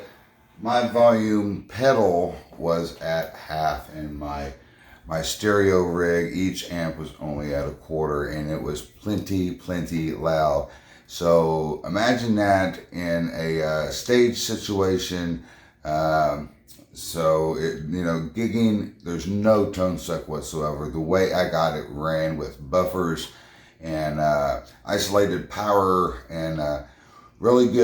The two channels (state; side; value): identical; both; correlation 1.00